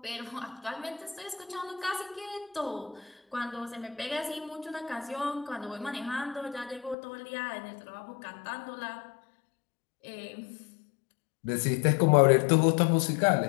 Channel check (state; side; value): drops out; right; at 7.0 s